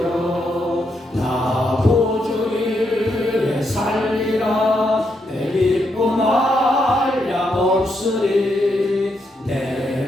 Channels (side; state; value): both; normal; correlation 0.80